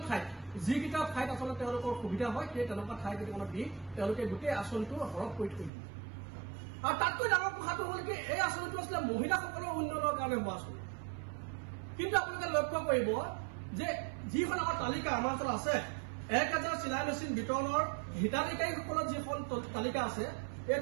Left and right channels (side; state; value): left; drops out; at 5.7 s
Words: ঠাইত যিকেইটা ঠাইত আচলতে তেওঁলোকৰ সুবিধা হয় সেই তেনেকুৱা ঠাই কেইটামানত দি তেওঁলোকে গোটেই আঁচনিটো সৰহ কৰি থৈ দিয়ে আৰু তাতকৈ ডাঙৰ কথাটো হ'ল কি এই আঁচনিটো আছিলে মহিলাসকলৰ উন্নয়নৰ কাৰণে হোৱা আঁচনি কিন্তু আপোনালোকে লক্ষ্য কৰিব যে যিখন আমাৰ তালিকা আমাৰ ওচৰত আছে 1000 চিলাই মেচিন বিতৰণৰ হিতাধিকাৰীসকলৰ যিখন তালিকা আছে এই